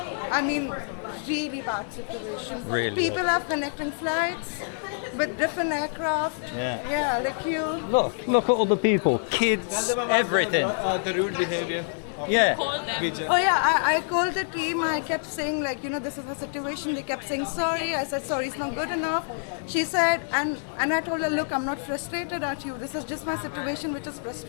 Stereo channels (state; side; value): silent; right; digital silence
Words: I mean, really bad situation. Really People bad. are connecting flights with different aircraft. Yeah. Like you. Look at all the people, kids, everything. The rude behavior. Yeah. Oh yeah, I called the team. I kept saying this is the situation. They kept saying sorry. I said sorry, it's not good enough. She said, and I told her, look, I'm not frustrated at you. This is just my situation, which is